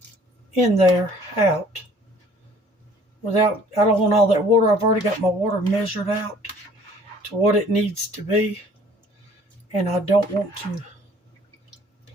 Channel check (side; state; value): both; normal; correlation 0.55